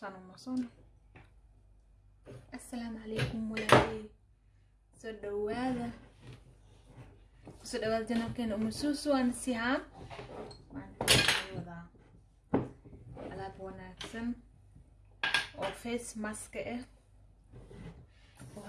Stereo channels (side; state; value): both; identical; correlation 1.00